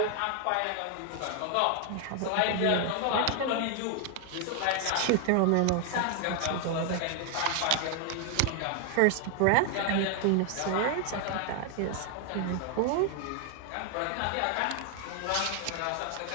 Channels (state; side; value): different; both; correlation 0.00